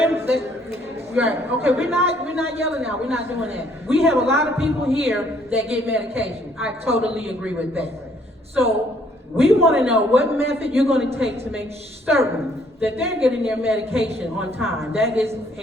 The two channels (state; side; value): normal; both; correlation 0.64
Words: right, okay, we're not yelling now, we're not doing that. We have a lot of people here that get medication. I totally agree with that. So, we wanna know what method you're gonna take to make certain that they're getting their medication on time. That is